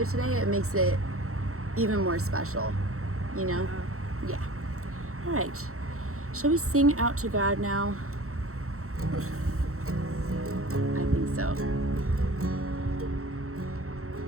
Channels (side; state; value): left; late; 0.63 ms